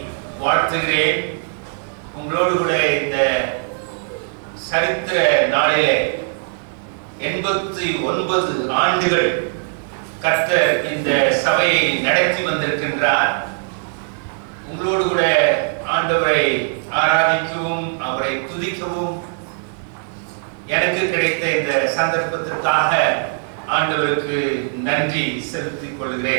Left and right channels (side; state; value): left; silent; 60 dB below the other